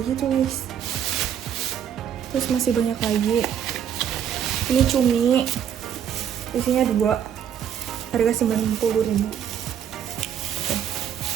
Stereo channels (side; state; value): left; quieter; 9.0 dB